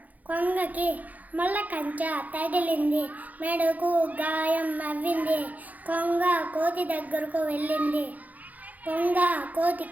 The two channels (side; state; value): left; late; 0.079 ms